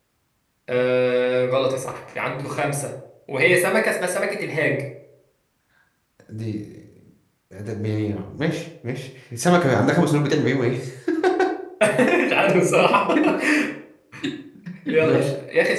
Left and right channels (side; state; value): both; identical; correlation 1.00